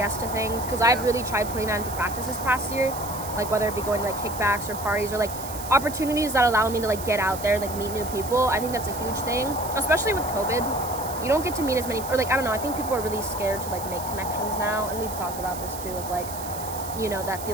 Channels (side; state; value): right; noise; hiss, 11 dB below the sound